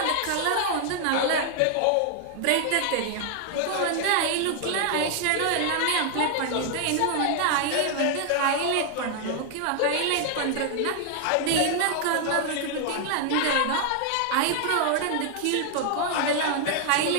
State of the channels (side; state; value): both; different; correlation 0.00